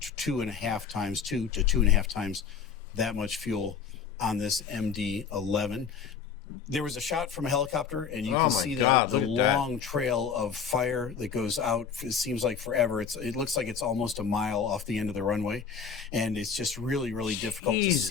to 2.5 times that much fuel on this MD-11. There was a shot from a helicopter, and you can see the long trail of fire that goes out. It seems like forever. It looks like it's almost a mile off the end of the runway, and it's just really, really difficult to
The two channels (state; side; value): quieter; right; 6.5 dB